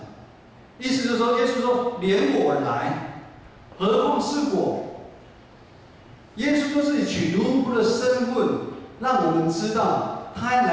意思就是说，耶稣说：“连我来，何况是我？”耶稣说自己取奴仆的身份，让我们知道，他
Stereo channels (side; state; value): both; identical; correlation 1.00